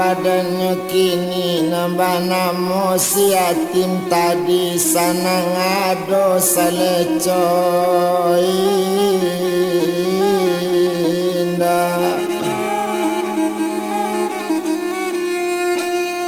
kini nambah namo si yatim tadi sana ngado salecoy indah.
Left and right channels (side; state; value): both; identical; correlation 1.00